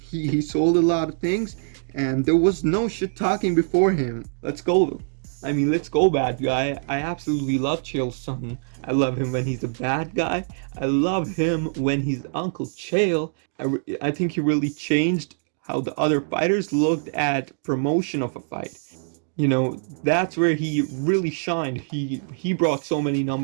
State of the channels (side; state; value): left; silent; digital silence